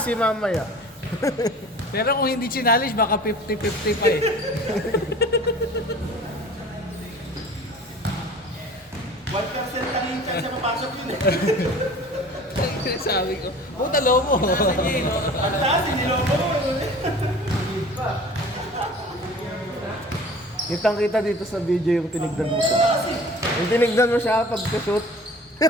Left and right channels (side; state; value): both; normal; correlation 0.44